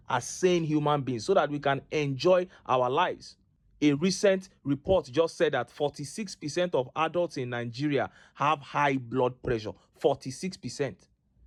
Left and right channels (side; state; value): both; identical; correlation 1.00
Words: as sane human beings, so that we can enjoy our lives. A recent report just said that 46% of adults in Nigeria have high blood pressure. 46%.